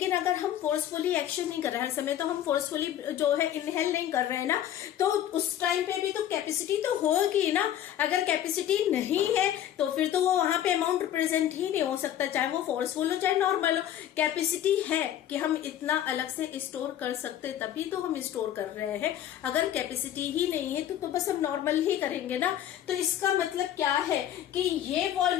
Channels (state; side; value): quieter; right; 11.3 dB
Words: अगर हम फोर्सफुली एक्शन नहीं कर रहे, हर समय तो हम फोर्सफुली जो है इनहेल नहीं कर रहे हैं ना, तो उस टाइम पे भी तो कैपेसिटी तो होगी ना। अगर कैपेसिटी नहीं है तो फिर तो वो वहां पे अमाउंट रिप्रेजेंट ही नहीं हो सकता, चाहे वो फोर्सफुल हो चाहे नॉर्मल हो। कैपेसिटी है कि हम इतना अलग से स्टोर कर सकते, तभी तो हम स्टोर कर रहे हैं। अगर कैपेसिटी ही नहीं है तो बस हम नॉर्मल ही करेंगे ना। तो इसका मतलब क्या है कि ये